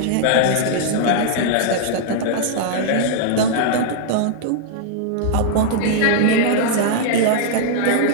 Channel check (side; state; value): both; different; correlation -0.01